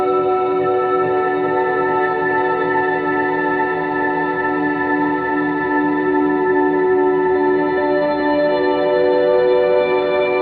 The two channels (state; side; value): identical; both; correlation 1.00